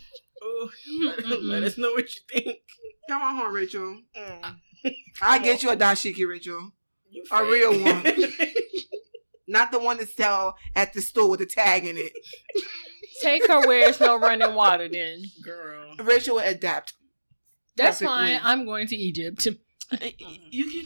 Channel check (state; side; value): inverted; both; correlation -1.00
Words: Oh, let us know what you think. Come on home, Rachel. I'll get you a dashiki, Rachel. A real one. Not the one that sell at the store with the tag in it. Take her where it's no running water then. Girl. Rachel will adapt. That's fine. I'm going to Egypt. You can